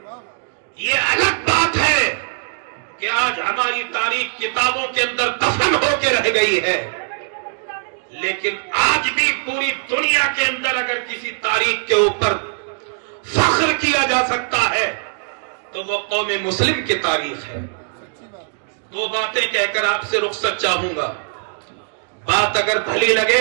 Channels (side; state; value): left; silent; 60 dB below the other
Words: یہ الگ بات ہے کہ آج ہماری تاریخ کتابوں کے اندر دفن ہو کے رہ گئی ہے، لیکن آج بھی پوری دنیا کے اندر اگر کسی تاریخ کے اوپر فخر کیا جا سکتا ہے تو وہ قوم مسلم کی تاریخ ہے۔ دو باتیں کہہ کر آپ سے رخصت چاہوں گا، بات اگر بھلی لگے